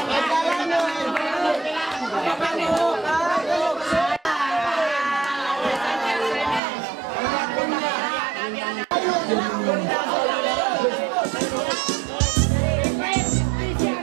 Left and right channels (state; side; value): drops out; left; at 6.6 s